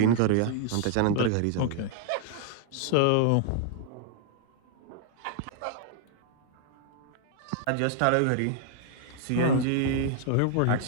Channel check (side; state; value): both; different; correlation -0.01